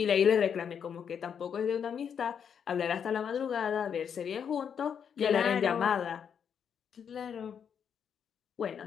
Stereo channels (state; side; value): quieter; right; 7.6 dB